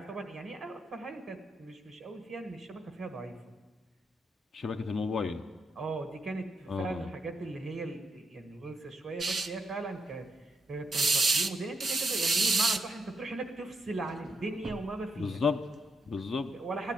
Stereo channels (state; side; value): normal; both; correlation 0.79